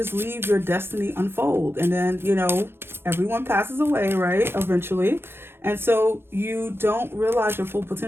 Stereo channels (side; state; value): left; late; 0.11 ms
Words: leave your destiny unfold, and then, you know, everyone passes away, right, eventually. And so you don't realize your full